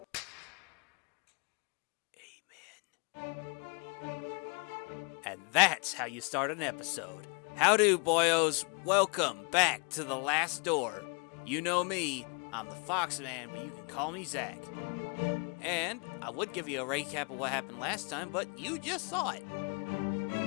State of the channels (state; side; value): quieter; right; 34.8 dB